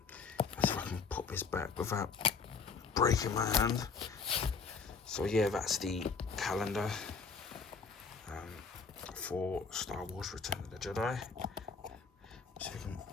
let's see if I can put this back without breaking my hand. So yeah, that's the calendar for Star Wars Return of the Jedi. So we can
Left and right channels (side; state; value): right; quieter; 5.2 dB